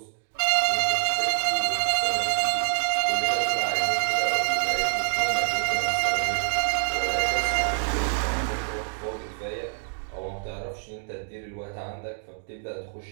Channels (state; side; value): silent; left; digital silence